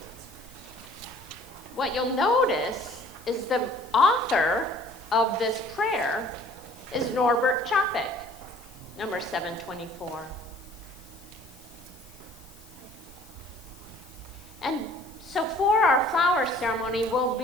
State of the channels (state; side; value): noise; left; hiss, 24 dB below the sound